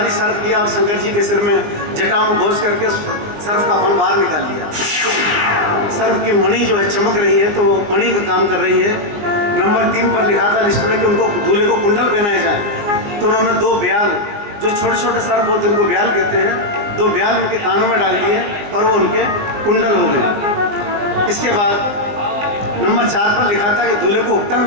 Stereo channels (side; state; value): left; late; 19 ms